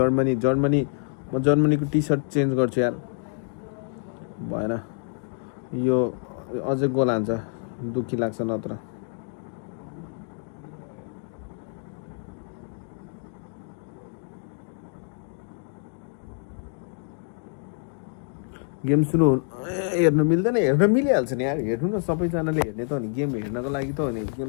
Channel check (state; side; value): silent; right; 55 dB below the other